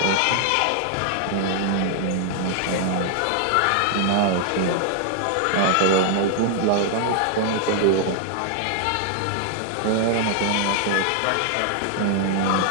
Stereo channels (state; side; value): different; both; correlation 0.00